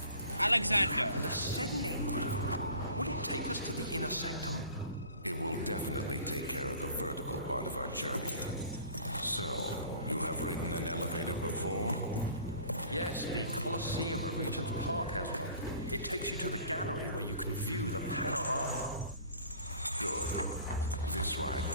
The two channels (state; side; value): inverted; both; correlation -0.47